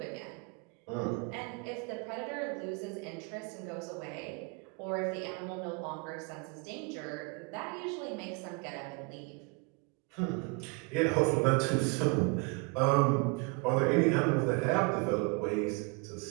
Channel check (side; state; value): left; quieter; 29.7 dB